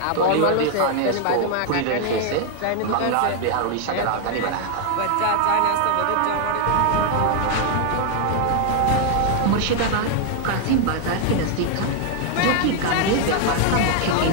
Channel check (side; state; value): both; different; correlation 0.00